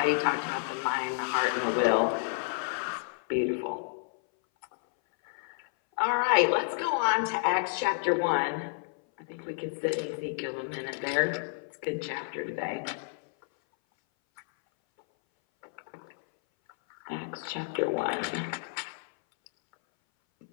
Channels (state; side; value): silent; right; 58 dB below the other